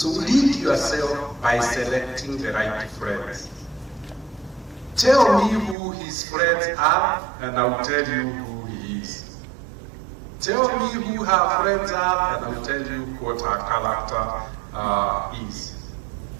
lead yourself by selecting the right friends. Tell me who his friends are, and I'll tell you who he is. Tell me who her friends are, and I'll tell you what her character is.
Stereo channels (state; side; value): drops out; left; at 5.8 s